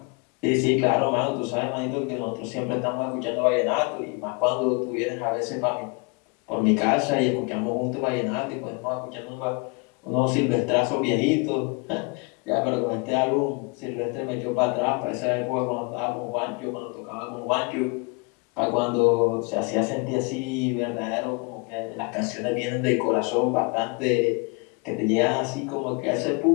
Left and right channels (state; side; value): quieter; right; 30.8 dB